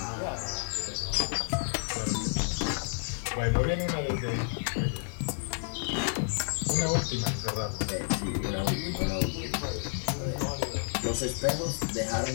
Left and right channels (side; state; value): right; silent; 57 dB below the other